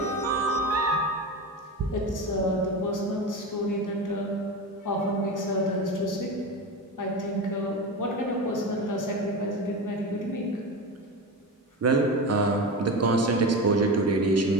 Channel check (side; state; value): both; normal; correlation 0.24